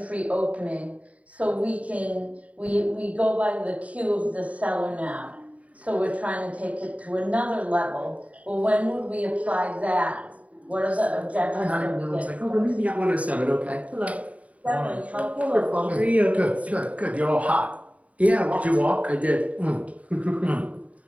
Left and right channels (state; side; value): late; left; 0.068 ms